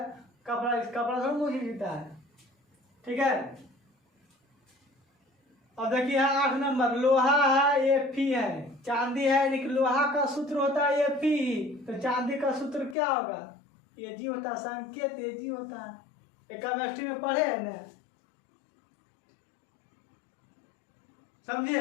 कपड़ा सब मोची जूता है। ठीक है। अब देखिए 8 नंबर, लोहा है ये फी है, चांदी है, लेकिन लोहा का सूत्र होता है ये फी, तो चांदी का सूत्र क्या होगा? ये जी होता है, संकेत ये जी होता है। केमिस्ट्री में पढ़े है ना,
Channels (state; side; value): drops out; right; at 13.0 s